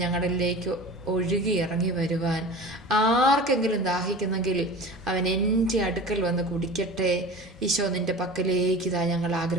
ഞങ്ങളിലേക്ക് ഒഴുകി ഇറങ്ങി വരുവാൻ. ആർക്കെങ്കിലും ദാഹിക്കുന്നെങ്കിൽ അവൻ എൻ്റെ അടുക്കൽ വന്ന് കുടിക്കട്ടെ ഈശോ. നിന്റെ പക്കലേക്ക് ഇതാ ഞങ്ങൾ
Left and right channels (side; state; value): both; normal; correlation 0.36